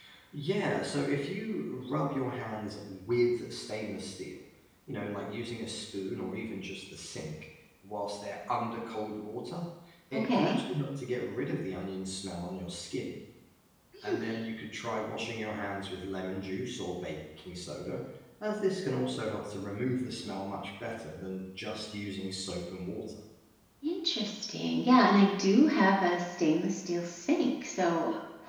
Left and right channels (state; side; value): identical; both; correlation 1.00